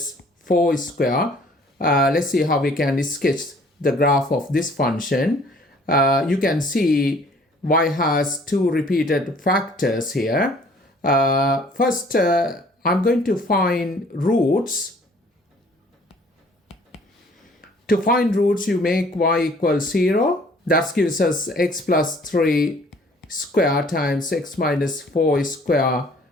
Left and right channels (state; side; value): normal; both; correlation 0.56